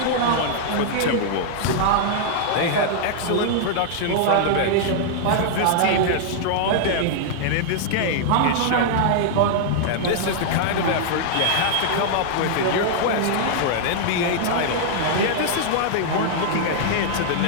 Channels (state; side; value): different; both; correlation -0.01